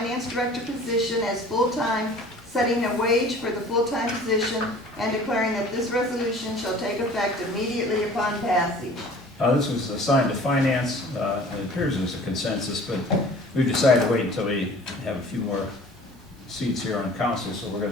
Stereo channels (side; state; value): both; normal; correlation 0.47